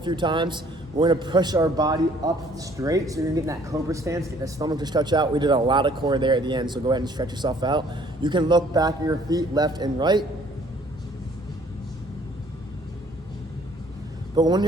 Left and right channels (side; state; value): both; normal; correlation 0.59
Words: few times, we're gonna push our body up straight. So you're gonna get in that cobra stance, get the stomach to stretch out. We did a lot of core there at the end, so go ahead and stretch yourself out. You can look back at your feet, left and right. But when